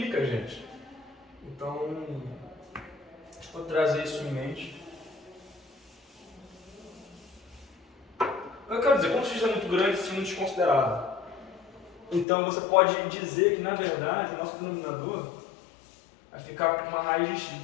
a gente. Então, deixa eu trazer isso em mente. Eu quero dizer, quando o x é muito grande, isso é muito desconsiderado. Então, você pode dizer que, na verdade, o nosso denominador vai ficar com uma raiz de x.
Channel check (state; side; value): drops out; right; at 12.2 s